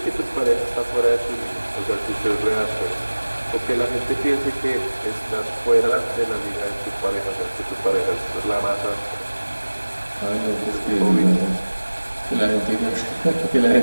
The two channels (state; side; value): inverted; both; correlation -1.00